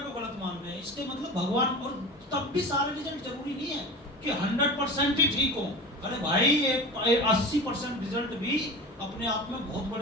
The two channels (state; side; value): normal; both; correlation 0.32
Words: को गलत मान रहे हैं। इसके मतलब भगवान, और तब भी सारे रिजल्ट जरूरी नहीं है कि 100% ही ठीक हो। अरे भाई 80% रिजल्ट भी अपने आप में बहुत